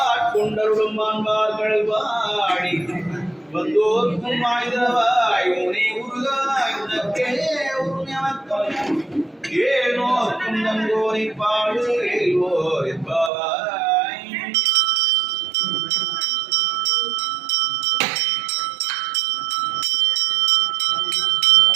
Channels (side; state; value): left; drops out; at 13.3 s